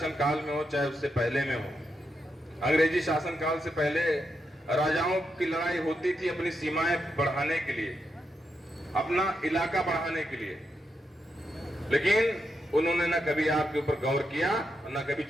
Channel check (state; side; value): normal; both; correlation 0.84